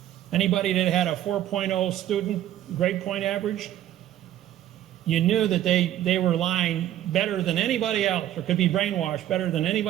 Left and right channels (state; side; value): quieter; left; 12.5 dB